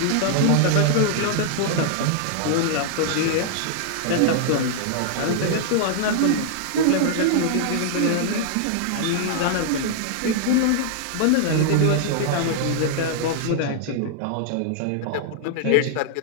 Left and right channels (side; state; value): both; different; correlation -0.01